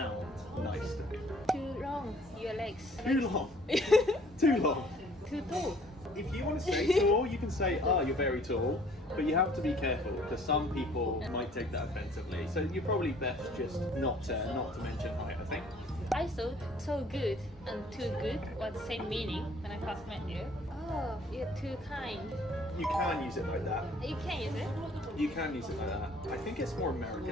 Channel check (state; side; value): normal; both; correlation 0.57